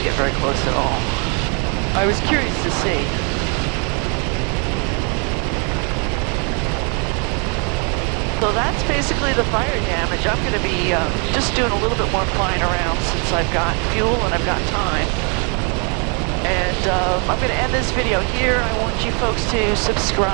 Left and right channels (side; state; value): left; quieter; 36.1 dB